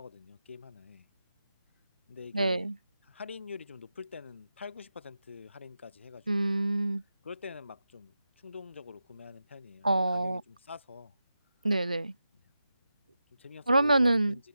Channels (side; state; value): both; inverted; correlation -0.90